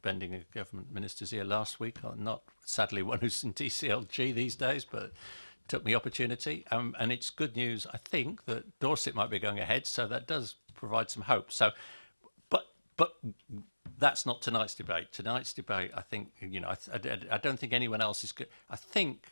a government minister's ear last week, not sadly one who's in DCLG these days, but took the opportunity. And it's good news, I think, that Dorset might be going ahead, so that does provide some hope. So, but that's not tonight's debate. Tonight's debate, I think, I don't think anyone else is good. I think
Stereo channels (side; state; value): both; inverted; correlation -1.00